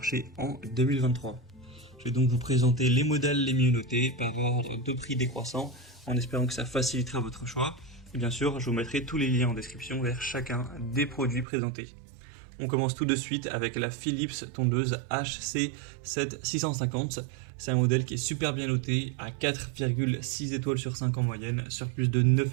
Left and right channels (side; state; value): left; drops out; at 11.5 s